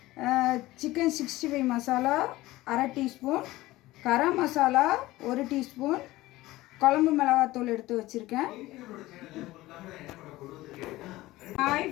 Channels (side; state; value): right; quieter; 17.9 dB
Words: சிக்கன் 65 மசாலா அரை டீஸ்பூன், கரம் மசாலா 1 டீஸ்பூன், குழம்பு மிளகாத்தூள் எடுத்து வச்சுருக்கேன். ஹாய்